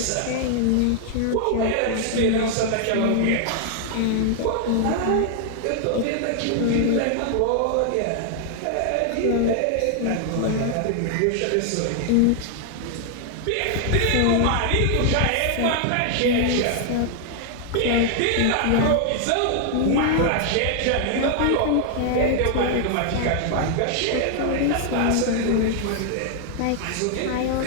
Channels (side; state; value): both; different; correlation 0.00